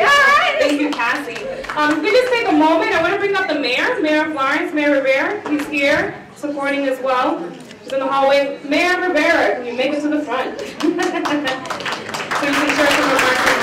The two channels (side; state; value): both; identical; correlation 1.00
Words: job. Thank you, Cassie. If we just take a moment, I want to bring up the mayor of Lawrence, Mayor Rivera. He's here supporting as well. He's in the hallway. Mayor Rivera, can you make it to the front? So you can share some remarks as